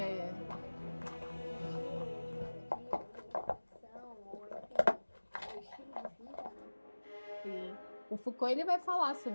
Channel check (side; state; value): both; inverted; correlation -1.00